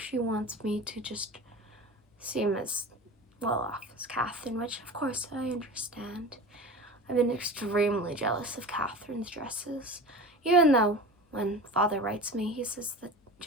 wants me to just seem as well off as Catherine, which of course I understand. I've been extremely jealous of Catherine's dresses, even though when Father writes me, he says that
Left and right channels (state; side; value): normal; both; correlation 0.33